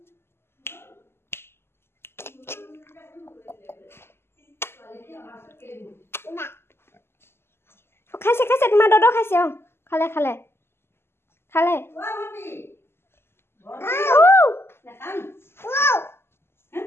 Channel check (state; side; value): late; right; 0.12 ms